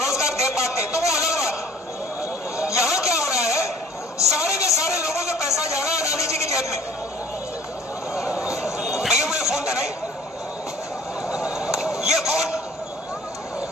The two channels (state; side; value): normal; both; correlation 0.51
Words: दे पाते तो वो अलग बात। यहां क्या हो रहा है, सारे के सारे लोगों से पैसा जा रहा है अदानी जी की जेब में। भैया मुझे फोन देना, ये